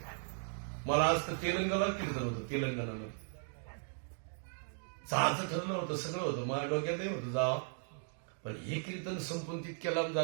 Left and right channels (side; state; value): left; silent; 53 dB below the other